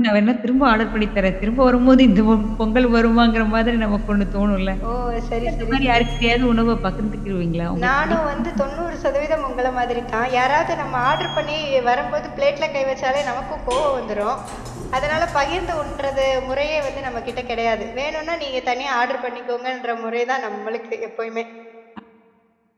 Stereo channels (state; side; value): identical; both; correlation 1.00